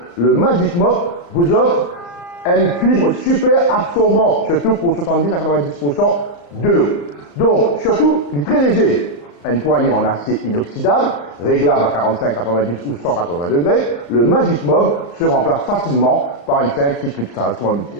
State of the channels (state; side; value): late; right; 35 ms